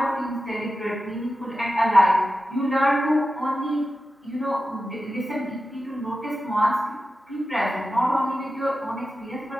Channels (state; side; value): normal; both; correlation 0.92